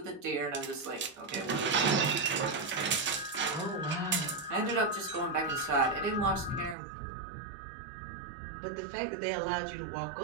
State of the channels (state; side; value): drops out; left; at 6.8 s